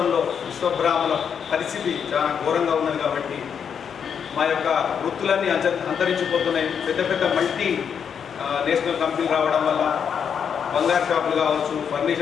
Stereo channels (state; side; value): quieter; right; 7.4 dB